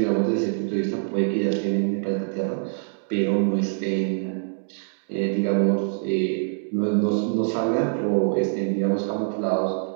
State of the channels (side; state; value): left; silent; digital silence